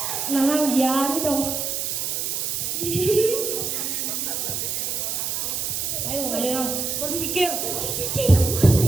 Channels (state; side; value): noise; right; hiss, 1 dB below the sound